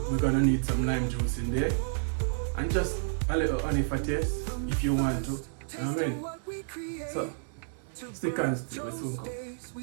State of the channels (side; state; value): left; silent; digital silence